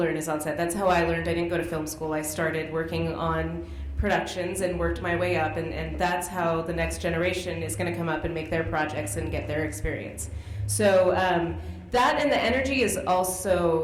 is on set. That's how I learned. I didn't go to film school. I started working on productions and worked my way up, and that's how the next generation is going to come up and make their projects and get their experience. So that and the energy is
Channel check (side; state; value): both; identical; correlation 1.00